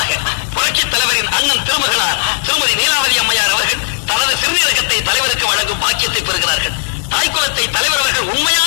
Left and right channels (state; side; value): silent; right; digital silence